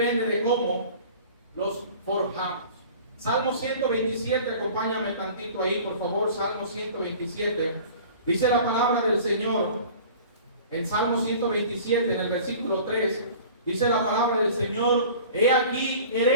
de cómo los forjamos. Salmo 127, acompáñame tantito ahí, por favor. Salmo 127. Dice la palabra del Señor en Salmo 127, en el versículo 3. Dice la palabra del Señor: he aquí,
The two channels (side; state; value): both; inverted; correlation -0.44